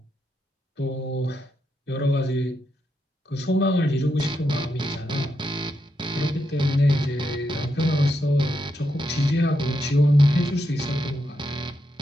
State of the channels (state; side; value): normal; both; correlation 0.83